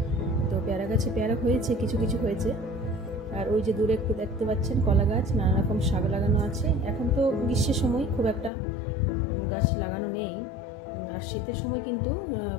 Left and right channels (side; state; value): right; drops out; at 8.5 s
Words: তো পেয়ারা গাছে পেয়ারা হয়েছে, কিছু কিছু হয়েছে। আর ওই যে দূরে একটু দেখতে পাচ্ছেন কলা গাছ, নানা রকম শাক লাগানো আছে। এখন তো গ্রীষ্মের সময় খুব একটা গাছ লাগানো নেই, আর শীতের সময় কিন্তু